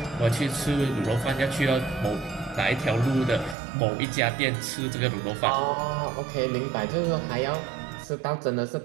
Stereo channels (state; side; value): drops out; left; at 3.6 s